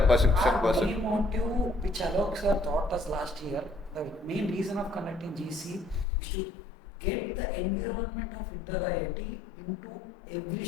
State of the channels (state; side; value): drops out; right; at 6.1 s